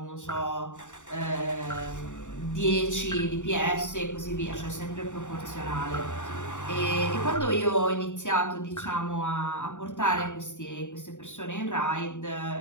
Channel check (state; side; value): late; right; 0.86 ms